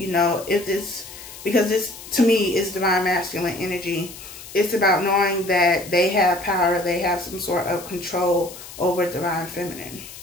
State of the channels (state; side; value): noise; left; hiss, 15 dB below the sound